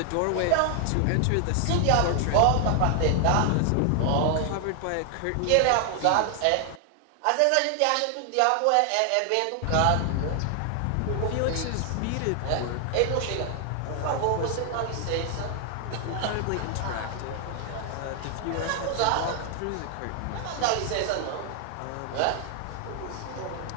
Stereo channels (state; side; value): different; both; correlation 0.00